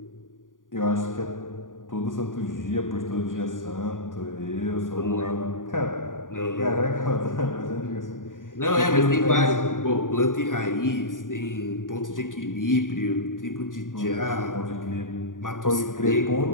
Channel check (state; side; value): late; right; 0.89 ms